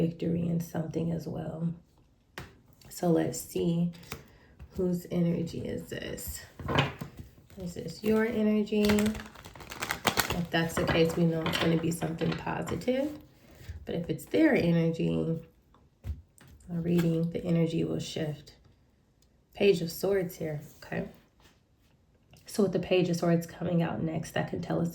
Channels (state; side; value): identical; both; correlation 1.00